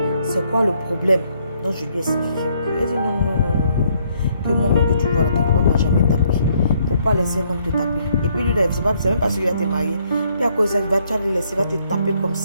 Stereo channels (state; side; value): inverted; both; correlation -0.69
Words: C'est quoi le problème? Donc je lui ai expliqué un peu. Elle dit, non. Que moi-même que tu vois là, ton papa m'a jamais tapé. Faut pas laisser un homme te taper. Et puis lui, c'est même pas sûr qu'il va te marier. Puis à cause de ça, il va te laisser, il va te taper comme